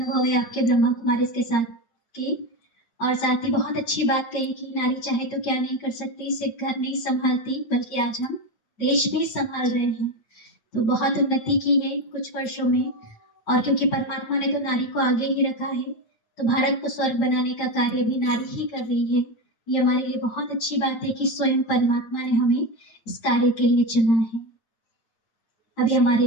है आपके ब्रह्मा कुमारी के साथ की। और साथ ही बहुत अच्छी बात कही कि नारी चाहे तो क्या नहीं कर सकती, सिर्फ घर नहीं संभालती बल्कि आज हम देश भी संभाल रहे हैं। तो बहुत उन्नति की है कुछ वर्षों में, और क्योंकि परमात्मा ने तो नारी को आगे ही रखा है, तो भारत को स्वर्ग बनाने का कार्य भी नारी ही कर रही है। ये हमारे लिए बहुत अच्छी बात है कि स्वयं परमात्मा ने हमें इस कार्य के लिए चुना है। अभी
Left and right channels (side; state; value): right; late; 9.0 ms